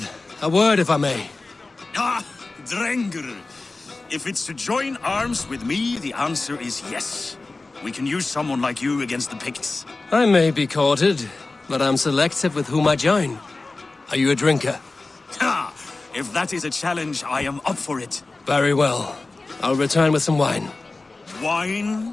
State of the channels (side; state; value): right; quieter; 3.4 dB